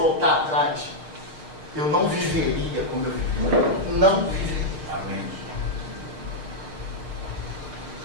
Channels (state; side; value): late; left; 6.5 ms